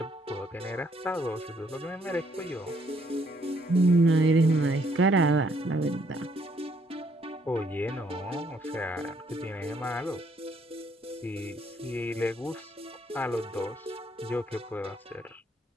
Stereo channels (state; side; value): normal; both; correlation 0.69